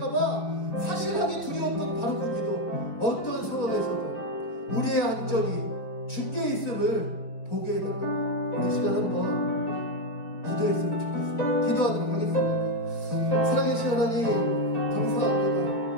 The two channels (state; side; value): late; right; 4.9 ms